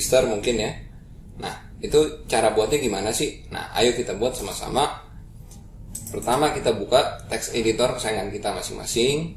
mungkin ya. Nah, itu cara buatnya gimana sih? Nah, ayo kita buat sama-sama. Pertama kita buka text editor kesayangan kita masing-masing.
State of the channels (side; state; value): both; identical; correlation 1.00